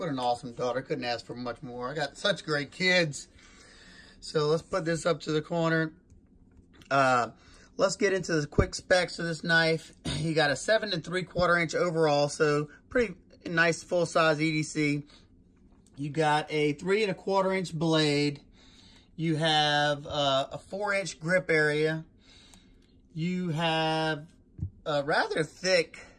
an awesome daughter. Couldn't ask for much more. I got such great kids. So let's put this up to the corner. Let's get into the quick specs of this knife. You got a 7 3/4 inch overall, so pretty nice full-size EDC. You got a 3 1/4 inch blade. You have a 4-inch grip area. You have a rather thick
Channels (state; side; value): identical; both; correlation 1.00